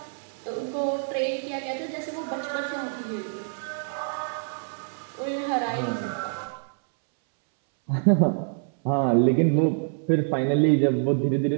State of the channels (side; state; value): left; silent; 61 dB below the other